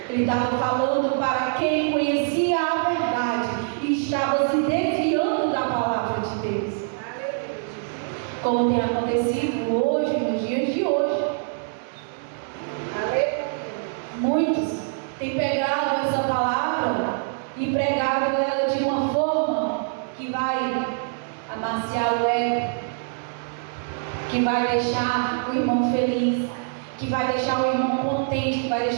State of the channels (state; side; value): silent; left; digital silence